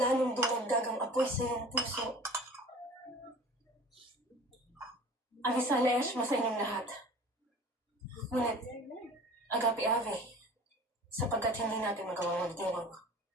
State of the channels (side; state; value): both; normal; correlation 0.43